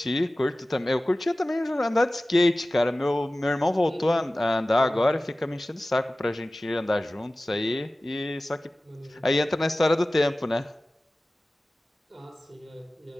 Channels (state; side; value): normal; both; correlation 0.97